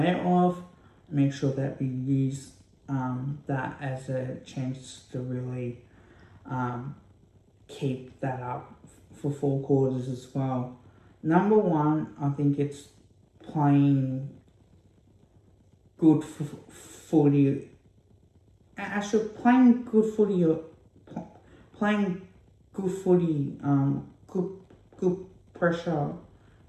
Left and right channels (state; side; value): identical; both; correlation 1.00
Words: of, make sure that we use that as a chance to really keep that up for 4 quarters as well. Number one, I think it's playing good footy. Actually, playing good footy, good pressure,